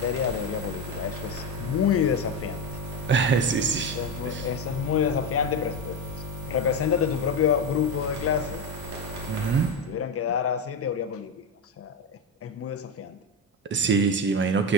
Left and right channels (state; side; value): normal; both; correlation 0.14